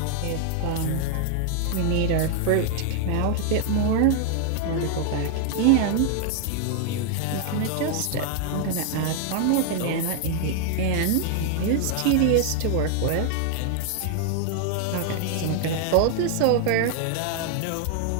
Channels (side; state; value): both; different; correlation 0.00